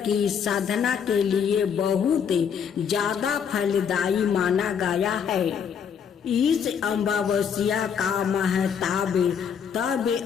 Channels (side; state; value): right; quieter; 7.3 dB